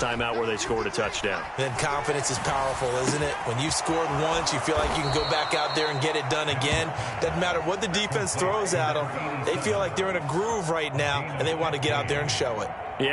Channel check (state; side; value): identical; both; correlation 1.00